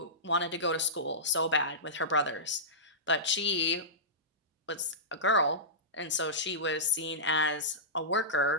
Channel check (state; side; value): normal; both; correlation -0.17